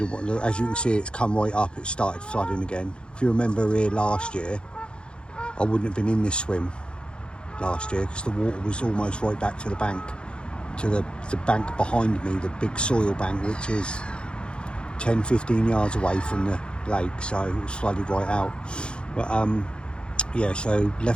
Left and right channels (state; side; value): late; right; 0.054 ms